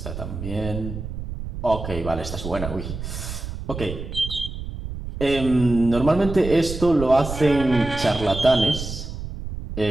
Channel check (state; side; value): noise; right; rumble, 8 dB below the sound